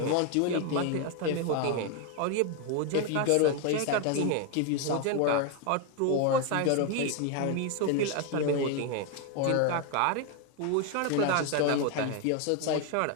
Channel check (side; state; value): both; different; correlation 0.01